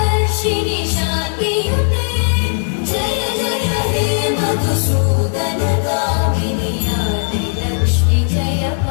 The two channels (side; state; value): right; silent; digital silence